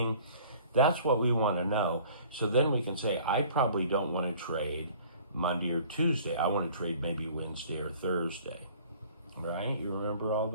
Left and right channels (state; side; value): inverted; both; correlation -0.50